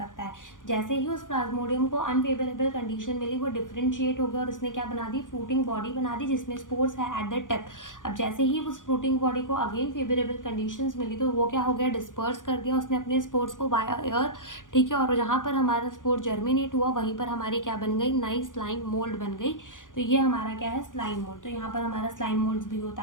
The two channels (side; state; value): right; late; 0.88 ms